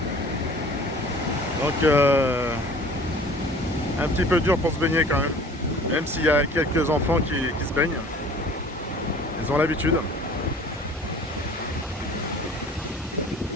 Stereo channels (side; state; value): both; normal; correlation 0.47